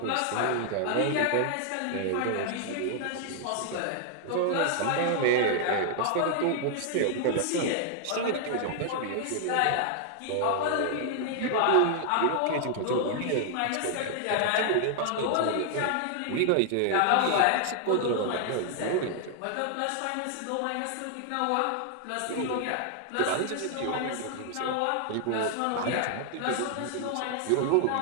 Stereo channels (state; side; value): different; both; correlation 0.00